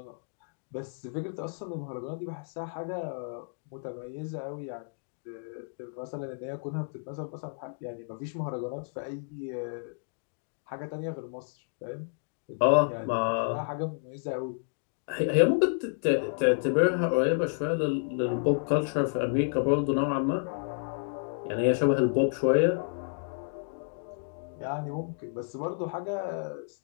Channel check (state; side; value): silent; right; digital silence